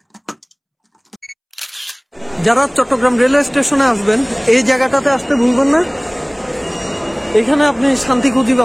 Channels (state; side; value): identical; both; correlation 1.00